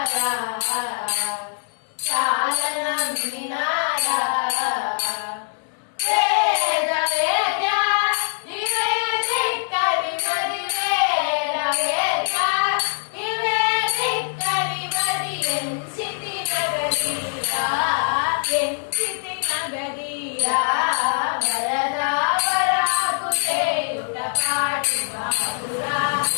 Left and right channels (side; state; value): right; silent; digital silence